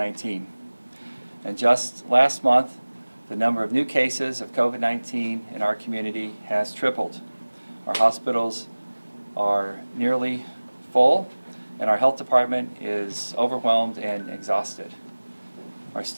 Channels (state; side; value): inverted; both; correlation -1.00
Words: And just last month, the number of new cases of COVID-19 in our community has tripled. Our hospitals are nearly full, and our health department is overwhelmed and exhausted. Our